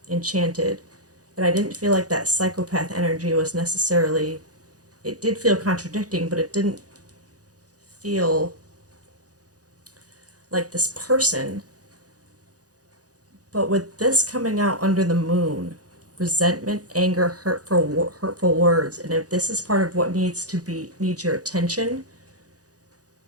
enchanted, and I didn't feel like that psychopath energy was necessarily, it did feel contradicting, but it didn't feel like this person. But with this coming out under the moon, resentment, anger, hurtful words, and if this is part of what needs your attention,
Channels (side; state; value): left; late; 0.67 ms